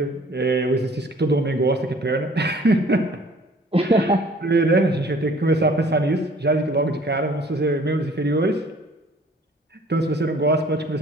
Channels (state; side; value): normal; both; correlation 0.53